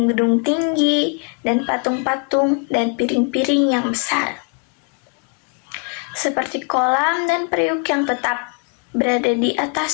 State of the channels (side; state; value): right; quieter; 36.6 dB